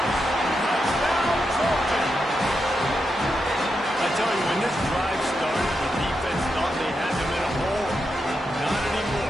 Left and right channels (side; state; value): both; normal; correlation 0.86